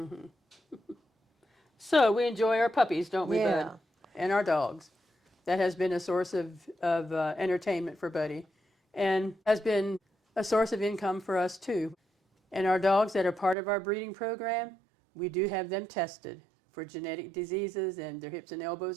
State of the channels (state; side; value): drops out; left; at 13.6 s